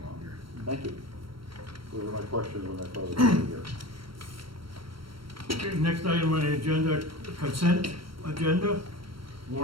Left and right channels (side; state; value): left; late; 0.74 ms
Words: thank you. Those were my questions when I thought it was here. Okay, next item on the agenda, consent agenda,